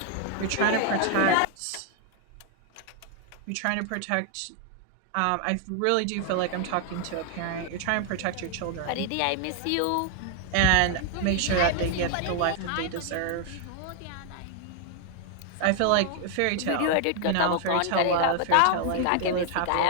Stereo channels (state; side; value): different; both; correlation 0.00